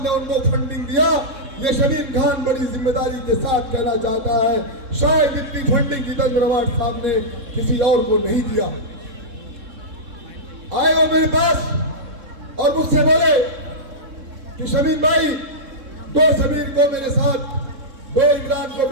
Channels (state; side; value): late; left; 3.7 ms